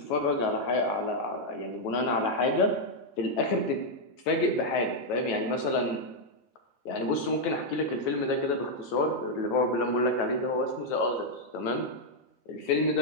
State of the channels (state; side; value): late; right; 9.2 ms